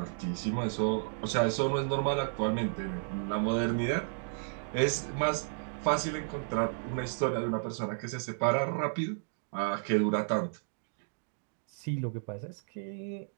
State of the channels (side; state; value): left; silent; digital silence